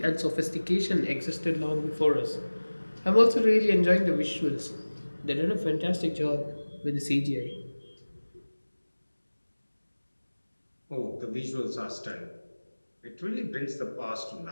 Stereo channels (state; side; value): inverted; both; correlation -1.00